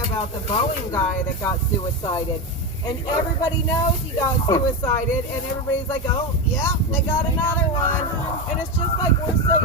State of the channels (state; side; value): normal; both; correlation 0.15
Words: about the Boeing guy that got suicided, and everybody knows he got suicided, and everybody's like, oh, yeah, they got another one. And it's just like we're so